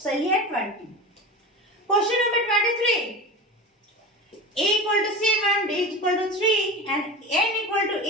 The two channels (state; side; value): normal; both; correlation 0.30